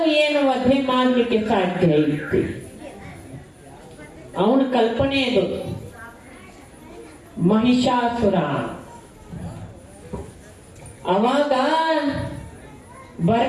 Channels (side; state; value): both; identical; correlation 1.00